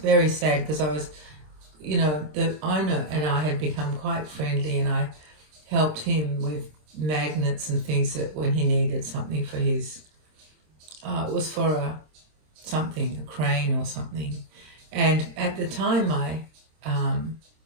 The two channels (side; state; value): left; late; 26 ms